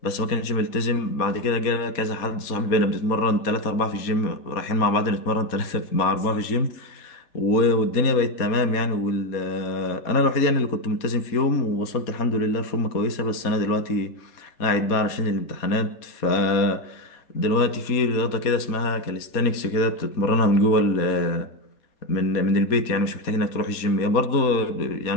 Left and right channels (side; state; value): right; late; 4.2 ms